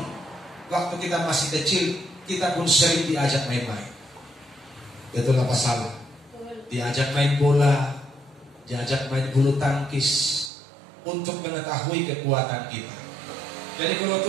waktu kita masih kecil, kita pun sering diajak main-main. Betul apa salah? Diajak main bola, diajak main bulu tangkis, untuk mengetahui kekuatan kita. Jadi kalau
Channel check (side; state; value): left; drops out; at 10.5 s